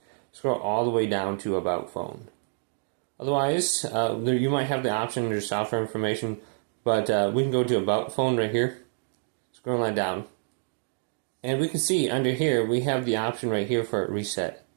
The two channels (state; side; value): silent; left; digital silence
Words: Scroll all the way down to about phone. Otherwise, you might have the option under software information, but we can go to about phone right here. Scroll line down. And we can see under here we have the option right here for reset.